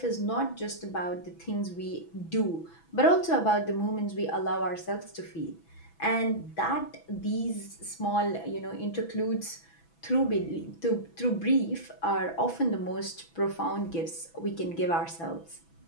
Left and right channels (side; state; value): right; late; 6.0 ms